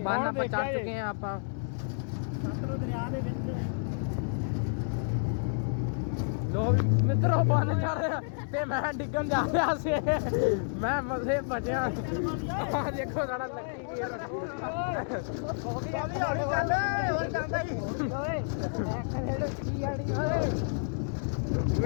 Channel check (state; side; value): silent; right; digital silence